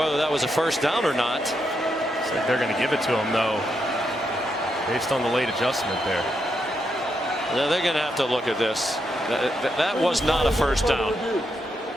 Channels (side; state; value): both; normal; correlation 0.81